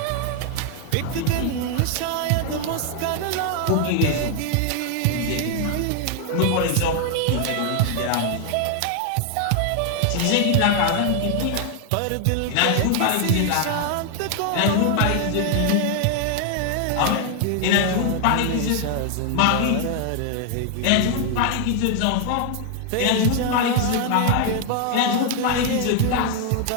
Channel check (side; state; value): both; different; correlation 0.00